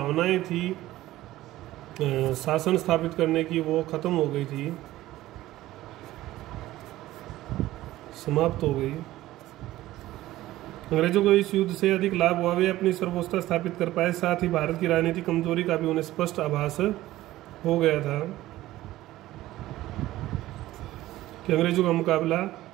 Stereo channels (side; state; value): left; quieter; 15.8 dB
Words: थी शासन स्थापित करने की वो खत्म हो गई थी, समाप्त हो गई। अंग्रेजों को इस युद्ध से अधिक लाभ हुआ। वे अपनी सर्वोच्चता स्थापित कर पाए। साथ ही भारत की राजनीतिक कमजोरी का भी उन्हें स्पष्ट आभास हो गया था कि अंग्रेजों का मुकाबला